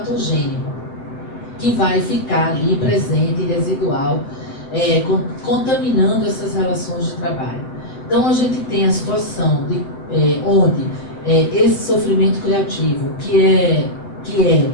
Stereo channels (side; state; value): right; late; 7.5 ms